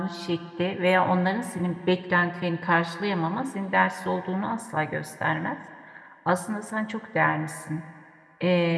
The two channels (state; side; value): identical; both; correlation 1.00